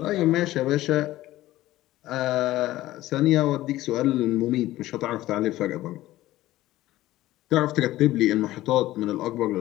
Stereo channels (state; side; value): quieter; right; 15.9 dB